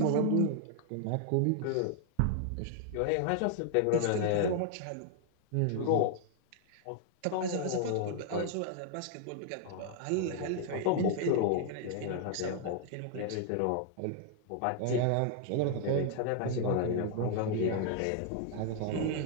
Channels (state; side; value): different; both; correlation -0.01